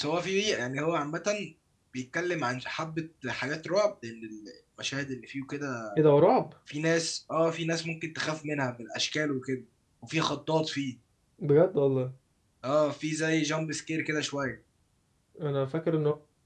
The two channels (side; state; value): both; identical; correlation 1.00